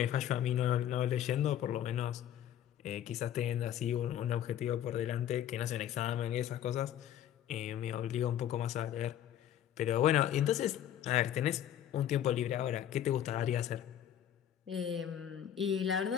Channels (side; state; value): right; quieter; 10.7 dB